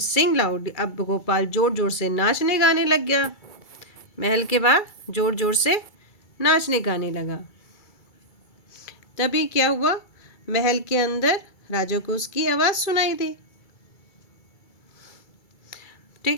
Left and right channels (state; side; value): late; right; 2.3 ms